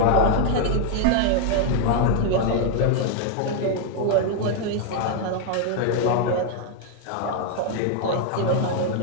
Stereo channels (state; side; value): different; both; correlation 0.00